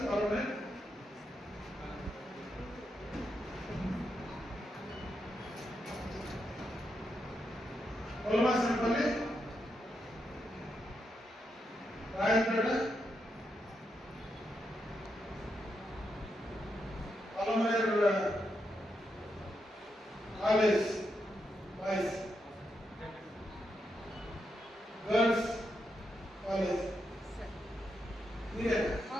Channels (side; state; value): both; normal; correlation 0.83